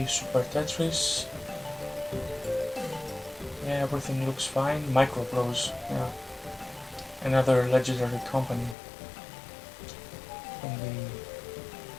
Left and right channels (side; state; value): right; drops out; at 8.8 s